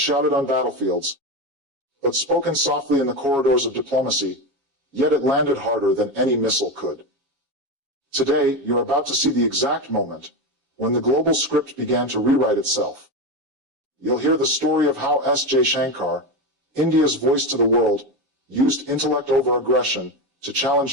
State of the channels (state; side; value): late; left; 7.3 ms